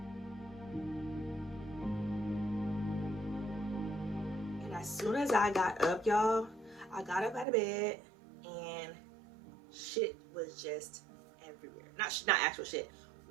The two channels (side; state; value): left; drops out; at 7.5 s